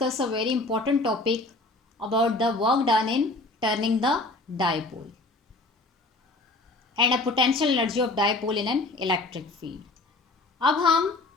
a very important topic about the work done in turning the dipole and a potential energy of dipole in an electric field. अब हम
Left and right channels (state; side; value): quieter; right; 3.0 dB